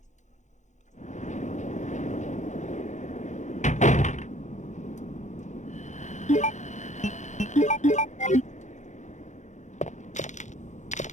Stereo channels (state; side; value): late; right; 0.35 ms